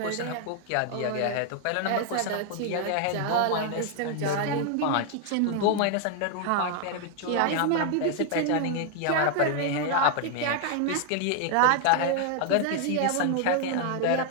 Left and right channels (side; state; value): both; different; correlation 0.00